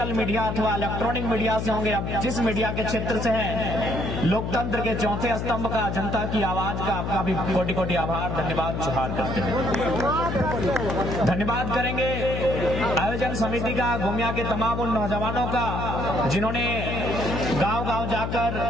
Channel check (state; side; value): noise; left; hum, 3 dB below the sound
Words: मीडिया अथवा इलेक्ट्रॉनिक मीडिया से होंगे, अब जिस मीडिया के क्षेत्र से है, लोकतंत्र के चौथे स्तंभ का, जनता की आवाज का आपका भी कोटि कोटि आभार, धन्यवाद जोहार करते हैं। धन्यवाद करेंगे आयोजन समिति का, गोमिया के तमाम उन नौजवानों का जिन्होंने गांव गांव जाकर,